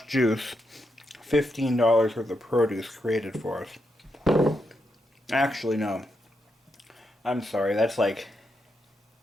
juice $15 worth of produce created for us. Actually, no. I'm sorry, that's like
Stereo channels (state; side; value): normal; both; correlation 0.83